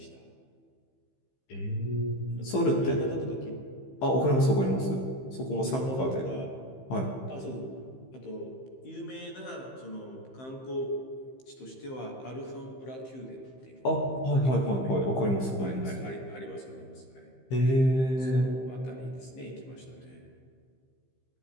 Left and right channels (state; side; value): late; right; 15 ms